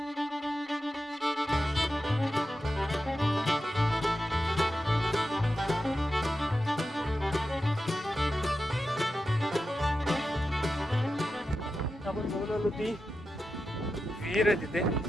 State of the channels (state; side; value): normal; both; correlation 0.90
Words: आपण बघून आलो ती विहीर आहे तिथे.